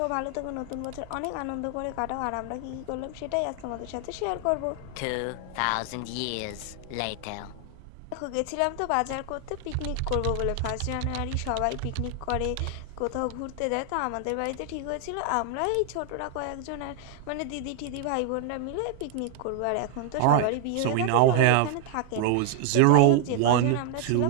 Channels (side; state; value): both; different; correlation 0.00